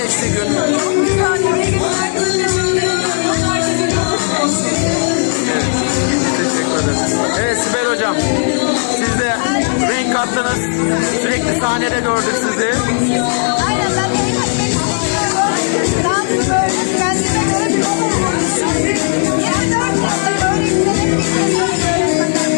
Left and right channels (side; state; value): right; silent; 57 dB below the other